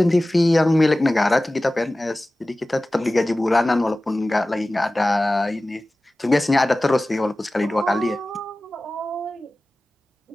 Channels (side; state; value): both; normal; correlation 0.97